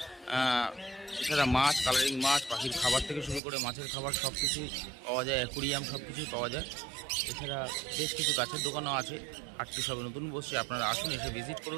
এছাড়া মাছ, কালারিং মাছ, পাখির খাবার থেকে শুরু করে মাছের খাবার সব কিছুই পাওয়া যায়, অ্যাকুরিয়াম সব কিছুই পাওয়া যায়। এছাড়া বেশ কিছু গাছের দোকানও আছে। হাটটি সবে নতুন বসছে, আপনারা আসুন, এসে ভিজিট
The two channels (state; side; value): drops out; left; at 3.4 s